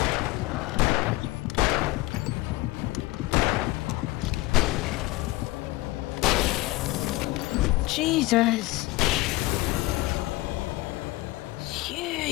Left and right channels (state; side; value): quieter; right; 20.1 dB